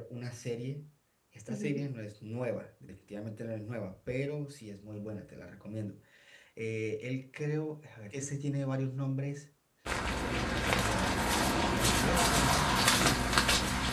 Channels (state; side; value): identical; both; correlation 1.00